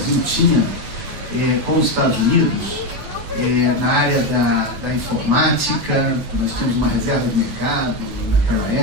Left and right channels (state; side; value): late; left; 9.2 ms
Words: tinha com os Estados Unidos, na área da informática. Nós tínhamos uma reserva de mercado naquela